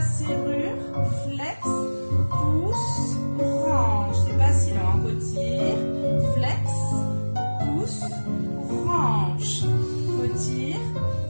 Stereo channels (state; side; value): inverted; both; correlation -1.00